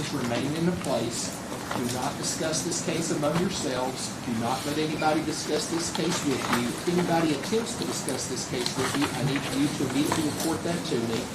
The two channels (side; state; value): both; identical; correlation 1.00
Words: remain in place. Do not discuss this case among yourselves. Do not let anybody discuss this case with you. If anybody attempts to discuss this case with you, I need you to immediately report that to me.